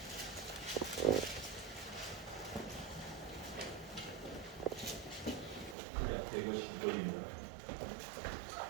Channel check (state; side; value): drops out; left; at 5.8 s